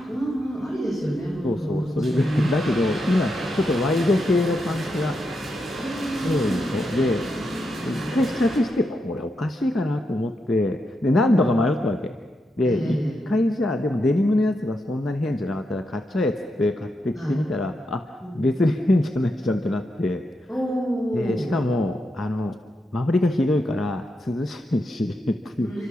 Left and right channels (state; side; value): normal; both; correlation 0.84